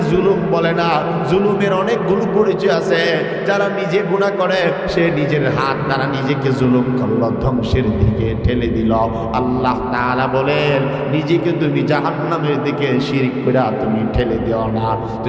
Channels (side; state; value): both; identical; correlation 1.00